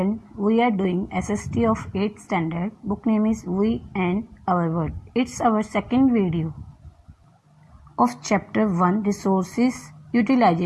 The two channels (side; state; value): both; identical; correlation 1.00